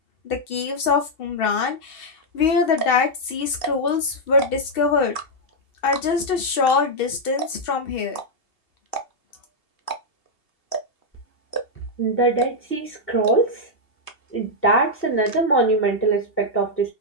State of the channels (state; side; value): late; right; 2.7 ms